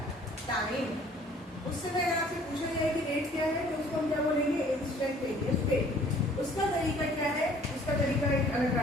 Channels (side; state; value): both; normal; correlation 0.55